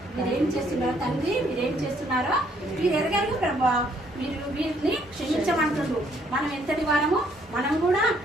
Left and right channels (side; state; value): both; normal; correlation 0.67